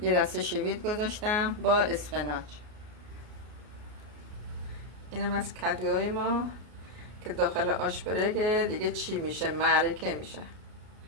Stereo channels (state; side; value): late; left; 33 ms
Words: دسته شوید گذاشتم با اسفناج. اینم از کدوهای ما که داخل آش برگه دیگه چی میشه، معرکه میشه.